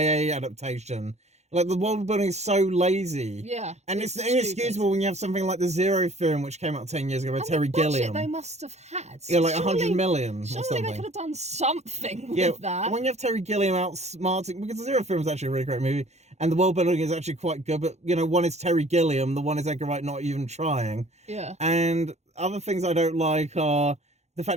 adaptation. Like, the world building is so lazy. Yeah. And it's inexcusable when you have something like The Zero Theorem, which came out 10 years ago by Terry Gilliam. They must have had. Yeah, like 100 million or something. Surely they could have done something with that. When you have Terry Gilliam outsmarting, because The Zero Theorem is actually a really great movie, and the world building is actually quite good, but, one is Terry Gilliam, the one is Edgar Wright not even trying. Yeah. And other things I don't like are the fact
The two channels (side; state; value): left; late; 0.32 ms